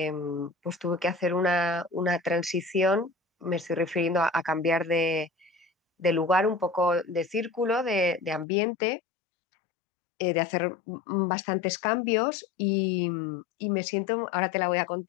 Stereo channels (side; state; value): right; drops out; at 8.5 s